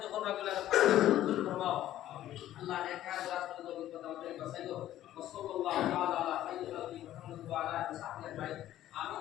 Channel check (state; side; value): quieter; right; 13.1 dB